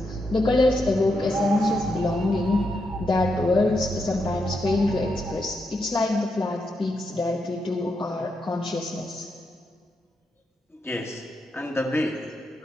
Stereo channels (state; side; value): normal; both; correlation 0.83